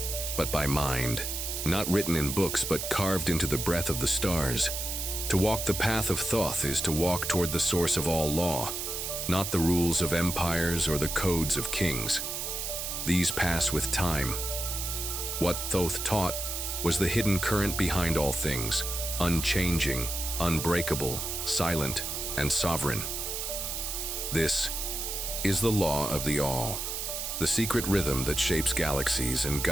but by mind. Not written in books, but carved into the breath of the stars. To walk the path of Thoth is to walk toward the source of all law, not the rules of empires or the codes of kings. These pass with time. What Thoth taught was the hidden current behind all things, unchanging, unbreakable, silent, and sovereign. This is the law of the all, the secret rhythm that shapes galaxies and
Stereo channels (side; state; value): right; noise; hiss, 3 dB below the sound